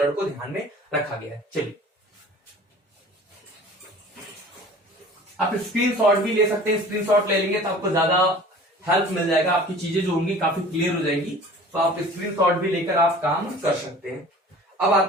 को ध्यान में रखा गया है। चलिए आप स्क्रीनशॉट भी ले सकते हैं, स्क्रीनशॉट ले लेंगे तो आपको ज्यादा हेल्प मिल जाएगा, आपकी चीजें जो होंगी काफी क्लियर हो जाएंगी, तो आप स्क्रीनशॉट भी लेकर आप काम कर सकते हैं। अब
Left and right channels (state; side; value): normal; both; correlation 0.45